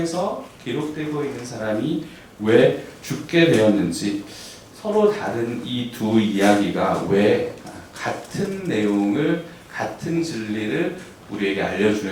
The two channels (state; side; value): identical; both; correlation 1.00